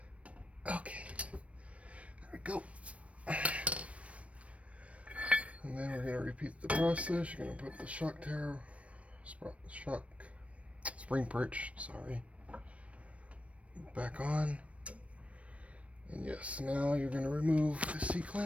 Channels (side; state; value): left; late; 0.063 ms